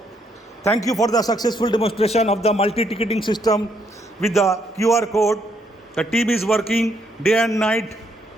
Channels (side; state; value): both; normal; correlation 0.73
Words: Thank you for the successful demonstration of the multi-ticketing system with the QR code. The team is working day and night